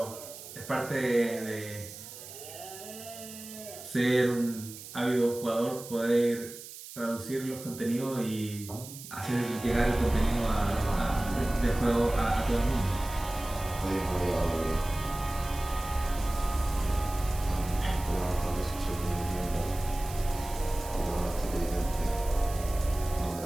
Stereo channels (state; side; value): noise; right; hiss, 14 dB below the sound